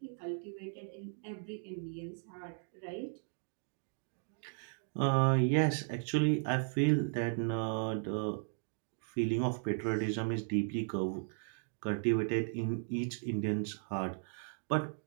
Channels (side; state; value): left; silent; digital silence